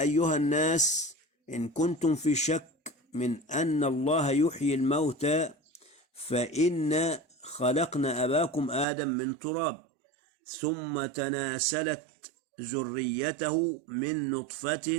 أيها الناس إن كنتم في شك من أن الله يحيي الموتى فإن خلقنا أباكم آدم من تراب ثم تناسلت ذريته من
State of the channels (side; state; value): left; drops out; at 8.8 s